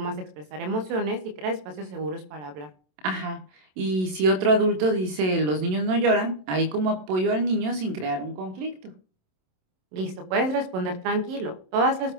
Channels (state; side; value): late; left; 27 ms